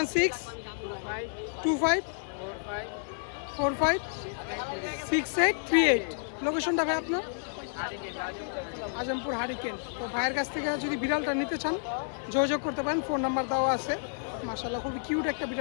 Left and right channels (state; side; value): silent; right; digital silence